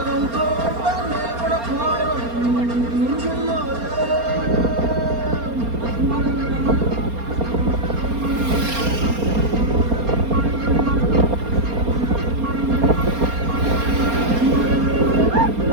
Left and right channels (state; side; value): late; left; 4.3 ms